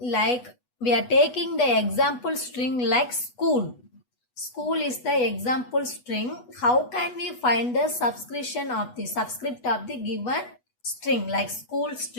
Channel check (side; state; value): right; late; 8.1 ms